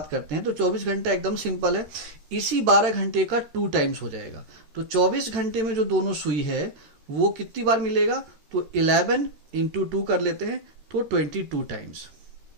करते हैं तो 24 घंटा एकदम सिंपल है, इसी 12 घंटे का 2 टाइम्स हो जाएगा। तो 24 घंटे में जो दोनों सुई है वो कितनी बार मिलेगा? तो 11 into 2 कर लेते हैं तो 22 टाइम्स,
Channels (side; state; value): left; late; 13 ms